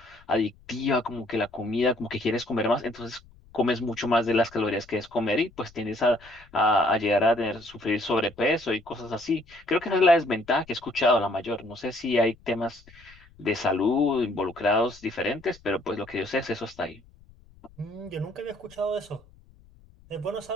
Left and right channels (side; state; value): left; noise; rumble, 26 dB below the sound